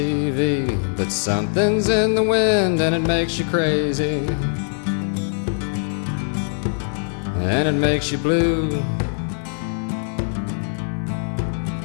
but something's in the wind and it makes you crazy. And it makes you blue.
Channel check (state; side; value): silent; right; 60 dB below the other